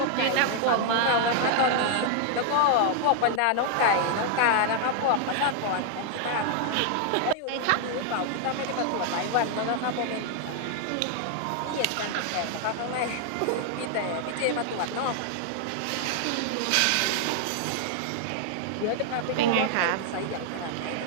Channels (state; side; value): different; both; correlation 0.00